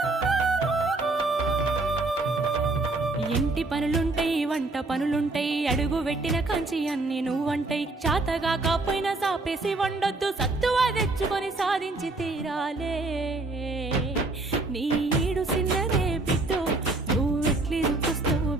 ఇంటి పనులుంటాయి వంట పనులుంటాయి అడుగు పెట్టిన కంచి అన్ని నువ్వంటాయి చాతగా కాపోయినా సాపేసి వండొద్దు సత్తువా తెచ్చుకొని సాధించి తీరాలే నీ ఈడు సిన్నరే బిడ్డో నువ్వెట్లి చూస్తావు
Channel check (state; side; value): quieter; left; 3.1 dB